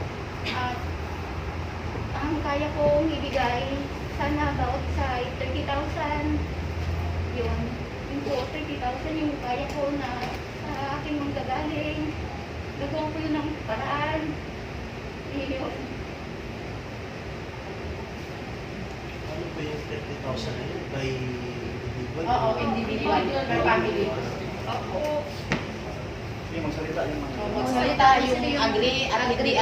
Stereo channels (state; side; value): identical; both; correlation 1.00